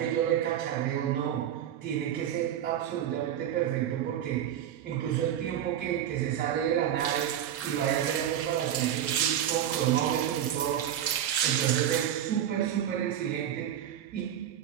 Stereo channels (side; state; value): left; quieter; 10.5 dB